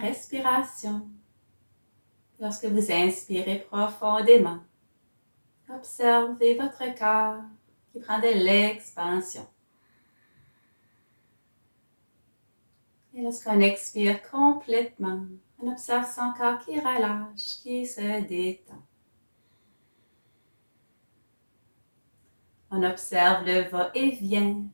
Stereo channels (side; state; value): both; inverted; correlation -1.00